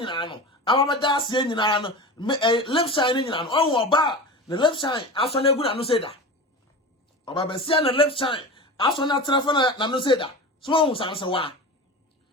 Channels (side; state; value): both; normal; correlation 0.30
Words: no amaba da ase nyina no left side nyina no o ba the left side aso na egu na no say da oba be sia na left side aso na trafa na no say da so o sanse wa